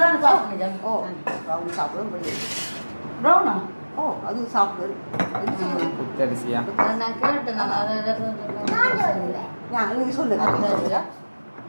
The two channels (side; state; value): both; inverted; correlation -1.00